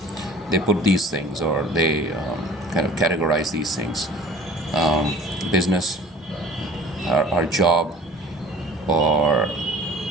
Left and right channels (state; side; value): normal; both; correlation 0.47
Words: they put these things, or they kind of categorize these things: business, our job, or